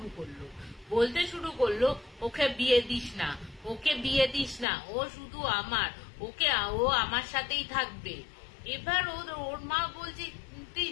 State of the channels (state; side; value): drops out; right; at 4.7 s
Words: করলো, বলতে শুরু করলো ওকে বিয়ে দিস না, ওকে বিয়ে দিস না, ও শুধু আমার, ও আমার সাথেই থাকবে। এবার ওর মা বলছে